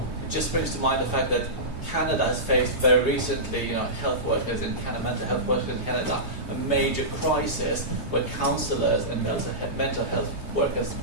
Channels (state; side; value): late; right; 3.3 ms